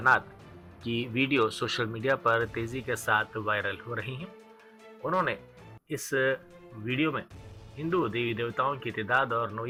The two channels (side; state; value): both; identical; correlation 1.00